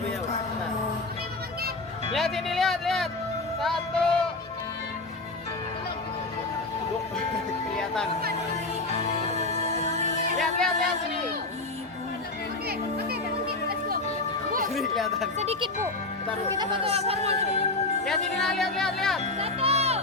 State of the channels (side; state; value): right; quieter; 3.2 dB